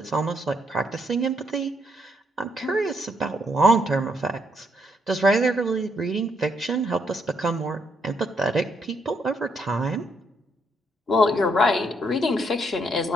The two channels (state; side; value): normal; both; correlation 0.74